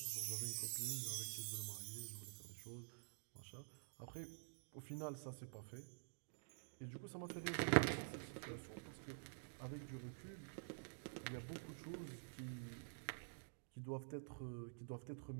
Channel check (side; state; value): left; silent; digital silence